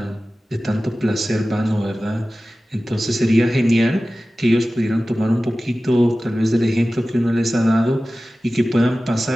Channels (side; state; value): both; normal; correlation 0.96